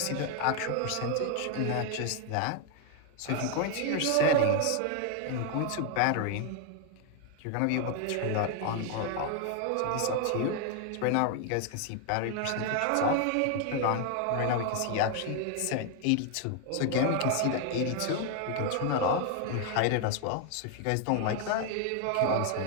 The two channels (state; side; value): different; both; correlation 0.00